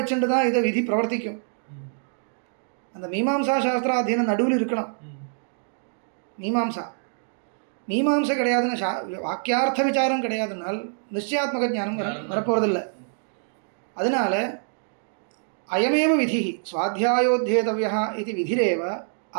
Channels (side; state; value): left; silent; digital silence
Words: தான் இதை விதி பிரவர்த்திக்கும். அந்த மீமாம்சா அத்தியனம் நடுவில் இருக்கணும். மீமாம்சை கிடையாதுன்னா வாக்கியார்த்த விசாரம் கிடையாதுனால் நிச்சயாத்மக ஞானம் வரப்போவதில்லை. அதனால அயமேவ விதி சுவாத்தியாயோத்யேதவ்யः इति विधिरेव